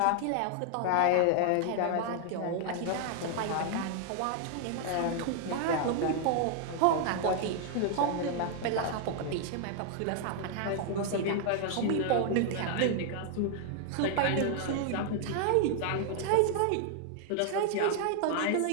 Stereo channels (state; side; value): different; both; correlation 0.00